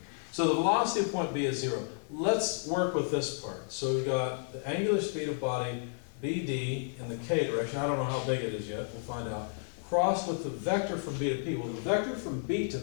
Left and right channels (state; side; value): silent; right; digital silence